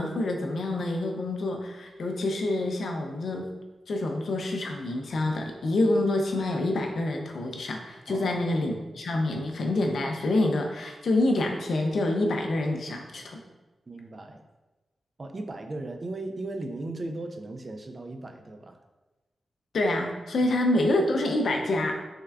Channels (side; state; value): both; normal; correlation 0.84